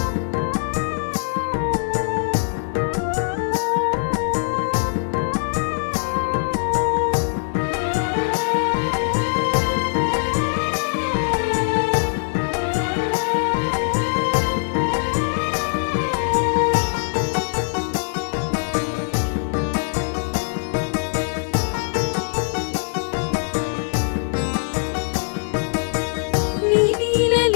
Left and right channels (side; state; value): right; silent; digital silence